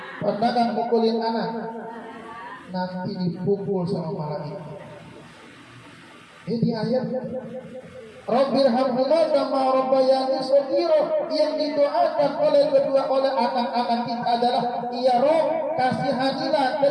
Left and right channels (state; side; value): identical; both; correlation 1.00